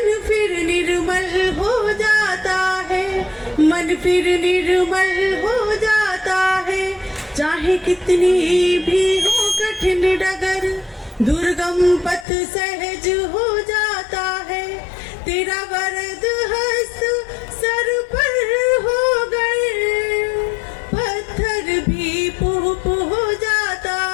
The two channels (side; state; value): right; drops out; at 12.2 s